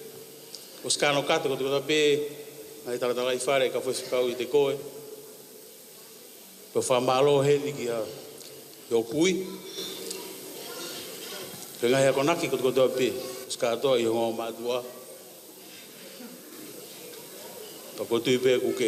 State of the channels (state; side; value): identical; both; correlation 1.00